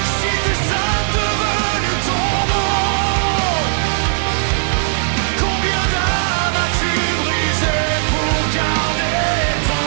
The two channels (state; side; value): silent; left; digital silence